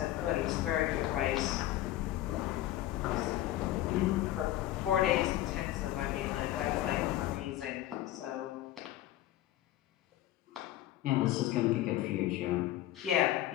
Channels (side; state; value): right; quieter; 14.4 dB